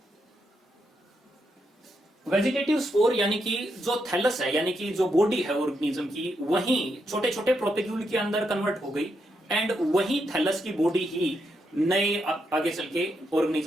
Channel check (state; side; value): normal; both; correlation 0.81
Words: वेजिटेटिव स्पोर यानी कि जो थैलस है, यानी कि जो बॉडी है ऑर्गेनिज्म की, वही छोटे छोटे प्रोपेग्यूल के अंदर कन्वर्ट हो गई एंड वही थैलस की बॉडी ही नए आगे चल के